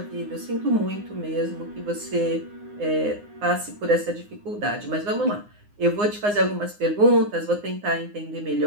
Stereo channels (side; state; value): left; late; 9.7 ms